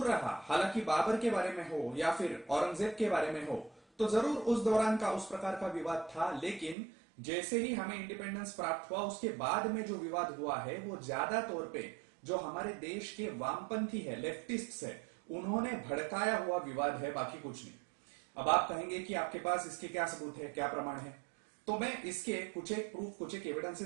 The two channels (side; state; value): left; drops out; at 6.8 s